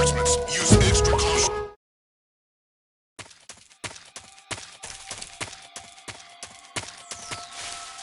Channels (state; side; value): identical; both; correlation 1.00